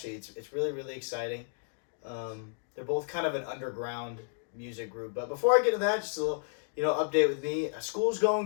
it's really, really exciting. They're both kind of an underground music group. But before I get to that, just a little, update with me. School's going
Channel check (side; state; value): right; silent; digital silence